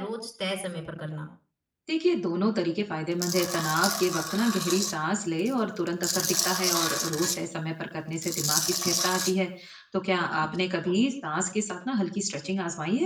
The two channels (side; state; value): both; identical; correlation 1.00